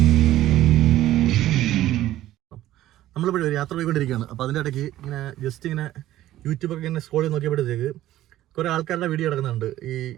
നമ്മളിപ്പോൾ ഒരു യാത്ര പോയിക്കൊണ്ടിരിക്കുകയാണ്. അപ്പോൾ അതിൻ്റെ ഇടയ്ക്ക് ഇങ്ങനെ ജസ്റ്റ് ഇങ്ങനെ യൂട്യൂബൊക്കെ ഇങ്ങനെ സ്ക്രോൾ ചെയ്ത് നോക്കിയപ്പോഴത്തേക്ക് കുറേ ആൾക്കാരുടെ വീഡിയോ കിടക്കുന്നുണ്ട്. ഈ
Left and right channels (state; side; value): quieter; left; 14.2 dB